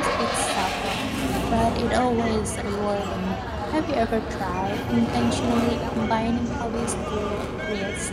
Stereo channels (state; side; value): identical; both; correlation 1.00